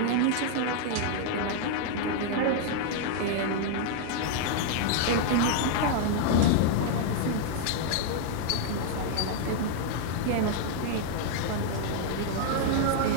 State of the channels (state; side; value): different; both; correlation 0.00